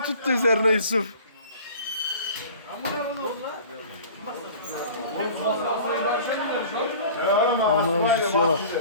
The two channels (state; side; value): inverted; both; correlation -0.44